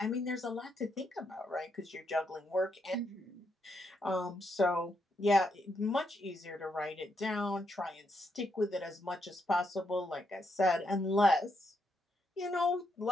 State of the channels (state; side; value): normal; both; correlation 0.79